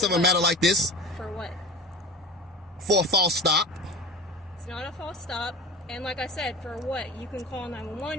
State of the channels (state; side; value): normal; both; correlation 0.33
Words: of a matter like this, For what? for a false stop. It's not a false stop. And like I said, for what? You can call